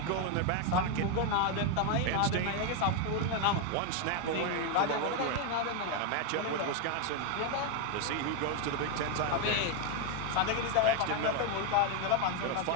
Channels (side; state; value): both; different; correlation 0.01